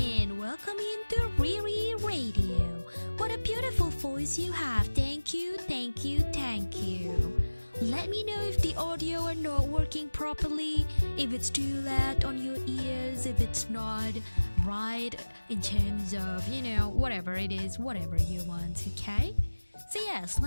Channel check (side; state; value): both; inverted; correlation -1.00